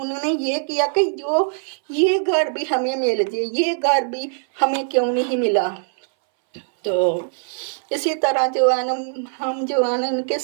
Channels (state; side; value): silent; left; 61 dB below the other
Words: ये किया कि जो ये घर भी हमें मिल जाए, ये घर भी हमें क्यों नहीं मिला। तो इसी तरह जो है ना हम जो है ना उनके